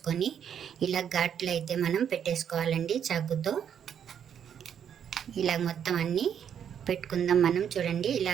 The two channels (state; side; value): quieter; left; 8.6 dB